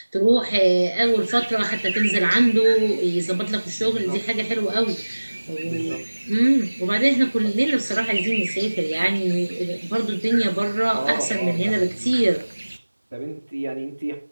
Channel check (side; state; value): both; inverted; correlation -1.00